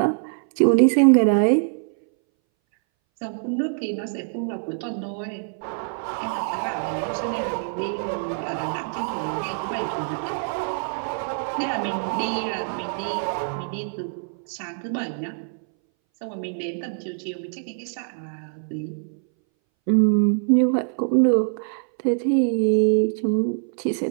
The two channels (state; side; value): silent; left; 61 dB below the other